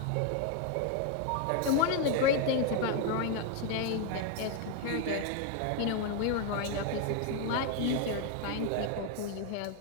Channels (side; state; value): both; different; correlation 0.01